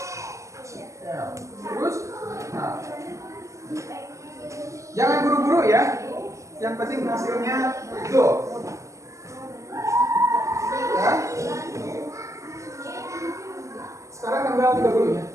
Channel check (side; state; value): left; late; 0.15 ms